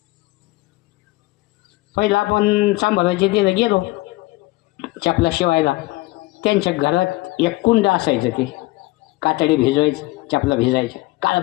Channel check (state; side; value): quieter; right; 20.9 dB